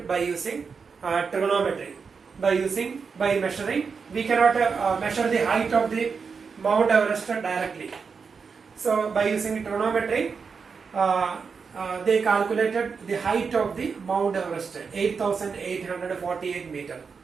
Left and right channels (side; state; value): left; quieter; 5.5 dB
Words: by using trigonometry. By measuring, we cannot measure the height of the Mount Everest directly. So by using trigonometry, they calculated the height of the Mount Everest, 8,848 meter.